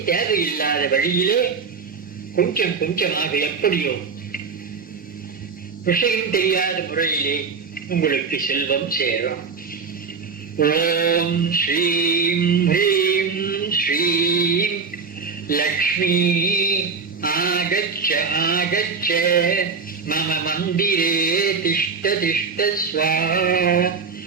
தேவையில்லாத வழியிலே கொஞ்சம் கொஞ்சமாக எப்படியோ விஷயம் தெரியாத முறையிலே உங்களுக்கு செல்வம் சேரும். ஓம் ஸ்ரீம் ஹ்ரீம் ஸ்ரீம் லக்ஷ்மி ஆகச்ச ஆகச்ச மம மந்திரே திஷ்ட திஷ்ட ஸ்வாஹா.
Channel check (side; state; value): left; quieter; 5.3 dB